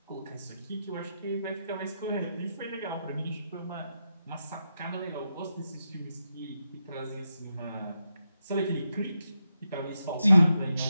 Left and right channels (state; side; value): inverted; both; correlation -0.85